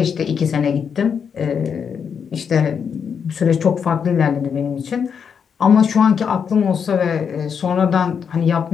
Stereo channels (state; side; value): quieter; right; 6.9 dB